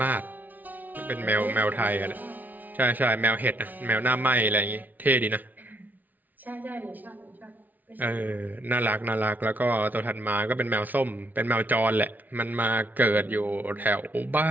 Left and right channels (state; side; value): late; left; 0.082 ms